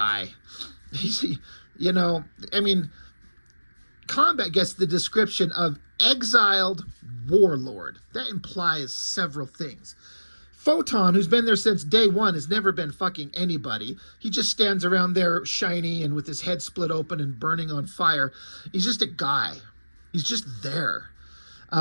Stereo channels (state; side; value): inverted; both; correlation -1.00